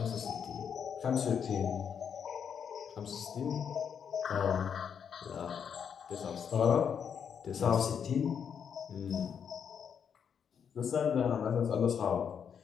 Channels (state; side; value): quieter; right; 7.5 dB